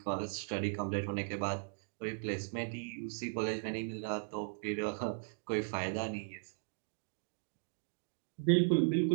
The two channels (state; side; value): silent; left; digital silence